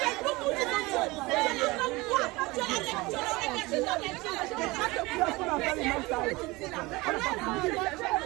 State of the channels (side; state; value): left; quieter; 22.3 dB